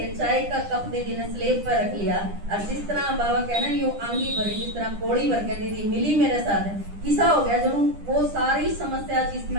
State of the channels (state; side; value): late; left; 10 ms